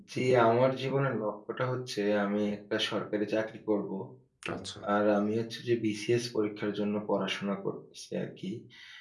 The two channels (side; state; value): both; identical; correlation 1.00